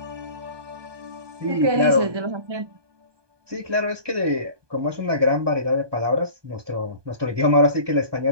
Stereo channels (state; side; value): late; left; 1.2 ms